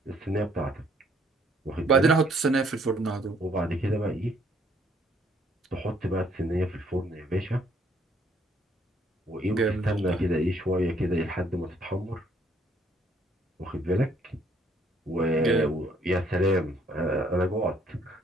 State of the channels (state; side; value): normal; both; correlation 0.65